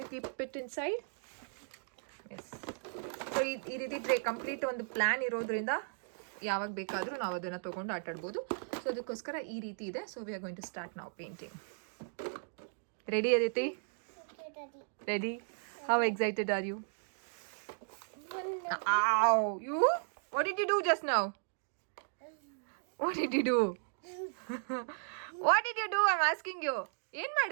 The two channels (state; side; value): silent; left; digital silence